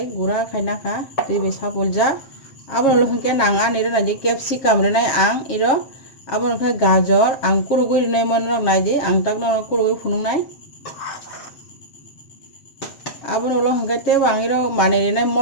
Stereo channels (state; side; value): late; right; 7.4 ms